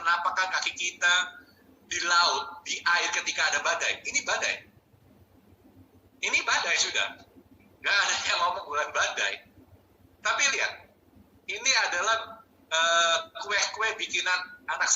kaki kita di laut, di air ketika ada badai? Ini badai sudah. Nggak ada yang ngomong bukan badai. Tapi lihat, ini adalah kue-kue bikinan anak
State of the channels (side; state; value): both; identical; correlation 1.00